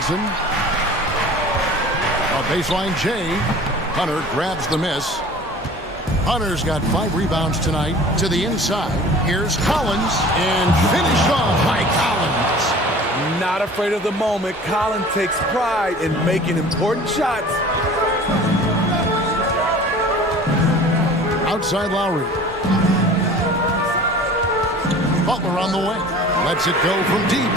A baseline J. Hunter grabs the miss. Hunter's got 5 rebounds tonight. To the inside. Here's Collins. And finished off by Collins. Not afraid of the moment. Collins takes pride in making important shots. Outside Lowry. Butler on the wing. Lets it go from deep.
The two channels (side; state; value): both; normal; correlation 0.44